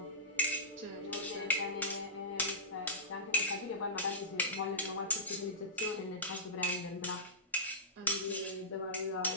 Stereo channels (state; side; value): normal; both; correlation -0.18